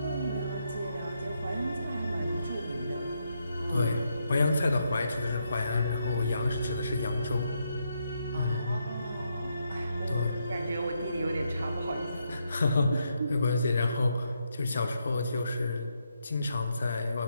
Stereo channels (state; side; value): inverted; both; correlation -0.80